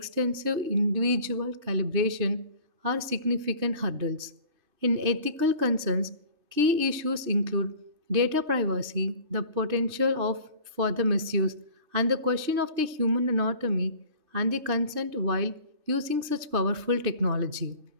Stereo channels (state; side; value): late; left; 3.3 ms